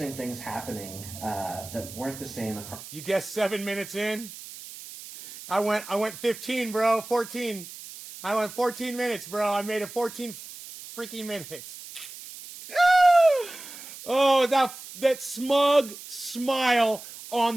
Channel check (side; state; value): right; noise; hiss, 14 dB below the sound